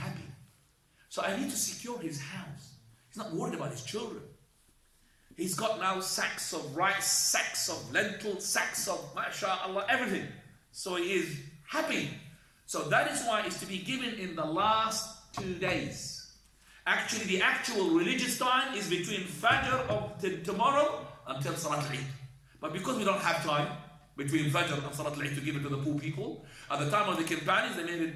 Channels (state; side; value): identical; both; correlation 1.00